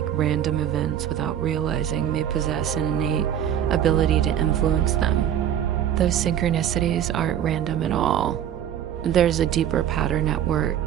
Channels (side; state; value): left; quieter; 10.1 dB